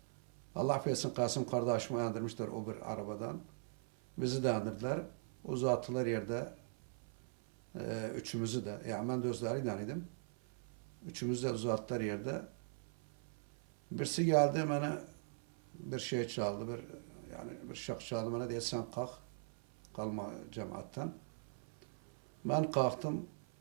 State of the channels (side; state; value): left; silent; 50 dB below the other